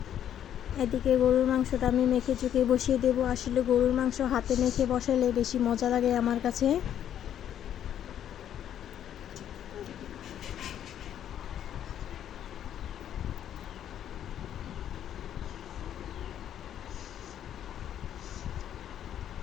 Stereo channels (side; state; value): right; quieter; 10.2 dB